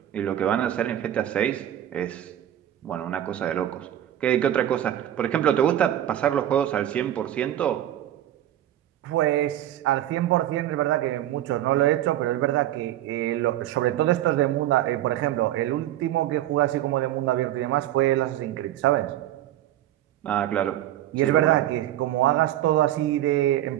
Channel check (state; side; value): quieter; left; 12.6 dB